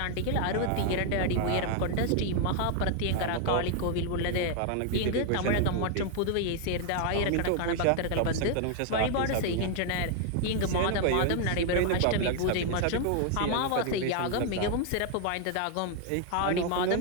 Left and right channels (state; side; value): different; both; correlation 0.00